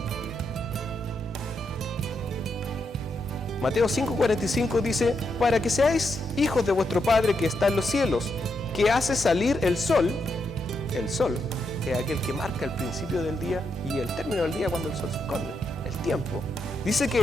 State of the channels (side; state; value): both; normal; correlation 0.81